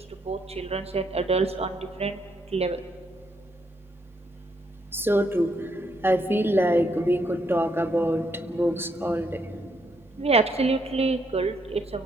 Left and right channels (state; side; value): normal; both; correlation 0.74